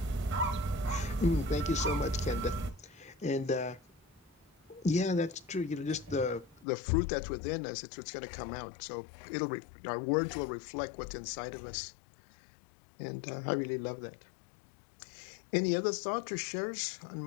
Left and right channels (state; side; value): drops out; right; at 6.7 s